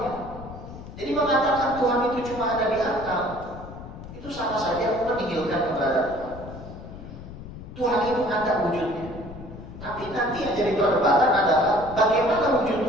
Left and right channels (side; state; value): left; noise; rumble, 13 dB below the sound